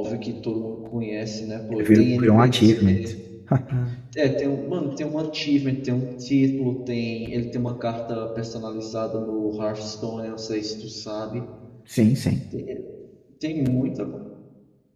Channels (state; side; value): identical; both; correlation 1.00